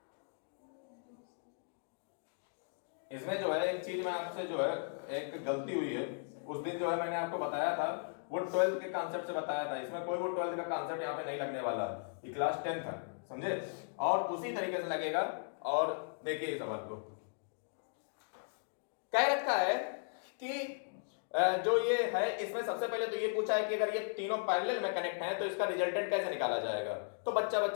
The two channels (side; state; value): right; silent; digital silence